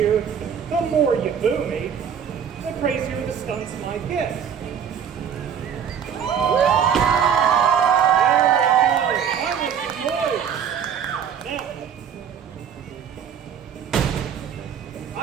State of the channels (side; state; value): left; quieter; 7.9 dB